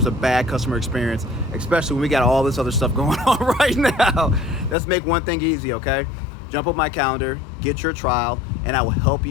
a bad customer experience, especially when we got all this other stuff going on right now. Let's make one thing easy, okay? Jump on my calendar, get your trial, and I will help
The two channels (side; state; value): right; drops out; at 4.8 s